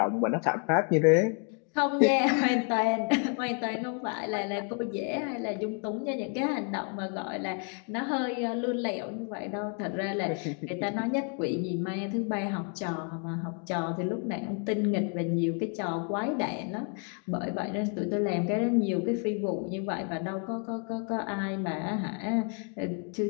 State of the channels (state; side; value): quieter; right; 40.0 dB